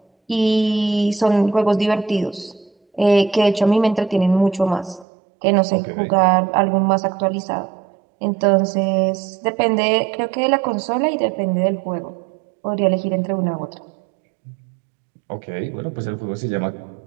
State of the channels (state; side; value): drops out; left; at 5.1 s